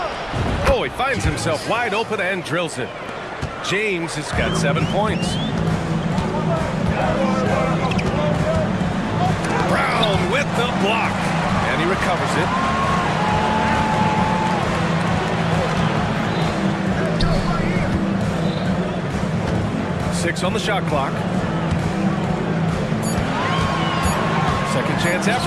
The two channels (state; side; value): identical; both; correlation 1.00